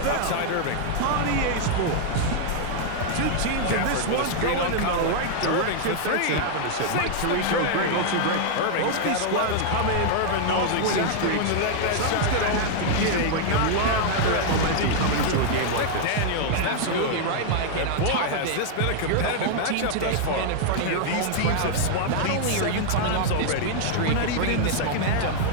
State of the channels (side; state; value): both; different; correlation 0.00